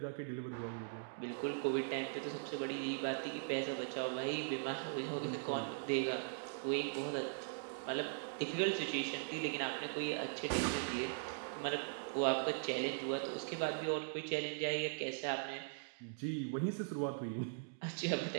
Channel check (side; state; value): left; silent; digital silence